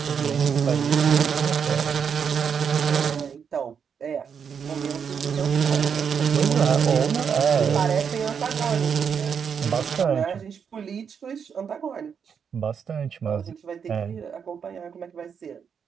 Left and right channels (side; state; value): left; quieter; 7.0 dB